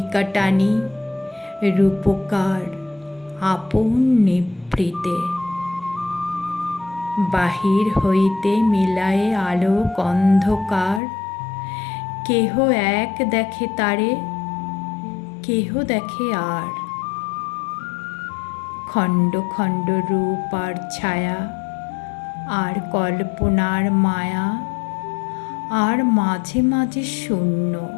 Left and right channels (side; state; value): right; drops out; at 11.0 s